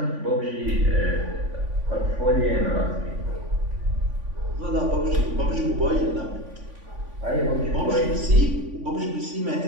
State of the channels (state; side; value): late; left; 3.5 ms